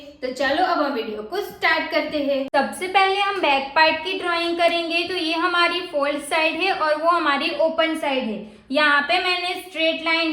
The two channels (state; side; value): identical; both; correlation 1.00